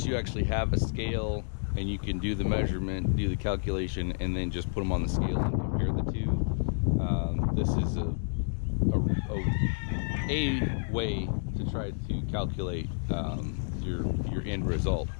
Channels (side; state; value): right; silent; digital silence